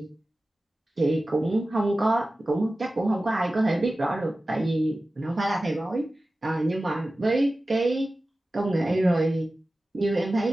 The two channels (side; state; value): both; normal; correlation 0.96